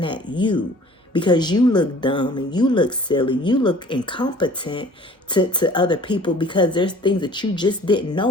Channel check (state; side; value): normal; both; correlation 0.49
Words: at you because you look dumb and you look silly. You look incompetent to other people because there's things that you just didn't